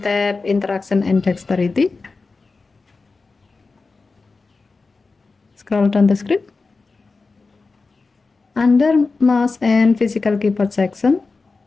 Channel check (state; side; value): quieter; right; 4.0 dB